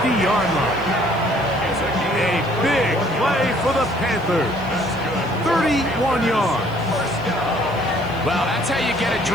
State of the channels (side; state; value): left; noise; hiss, 26 dB below the sound